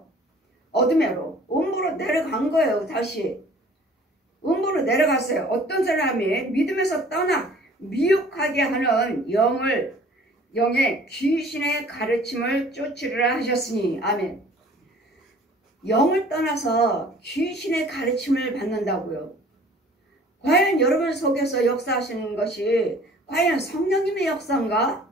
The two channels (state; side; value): normal; both; correlation 0.51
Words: 어둠으로, 음부로 내려간 거예요. 다시 음부로 내려갔어요. 어떤 사람이 믿음에서 떠나 미혹하게 하는 영의 귀신의 가르침을 쫓으리라 하셨으니. 아멘. 영을 떠나서 귀신의 가르침을 받는다고요. 과연 여러분 속에서 역사하시는 것이 과연 성령님의 역사인가?